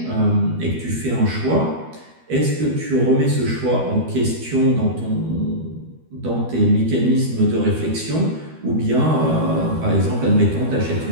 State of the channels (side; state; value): left; late; 12 ms